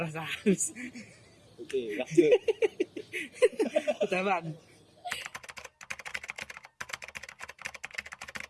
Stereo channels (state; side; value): identical; both; correlation 1.00